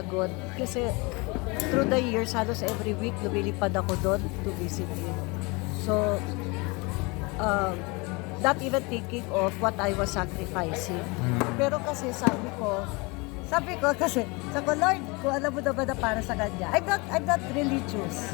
kasi through the years, halos every week, lumilipad ako doon to visit him. So, not even thinking of what I was sacrificing. Pero kasi sabi ko kasi, Lord, kung alam mo naman na para sa kanya, I'm not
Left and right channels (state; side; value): quieter; right; 27.2 dB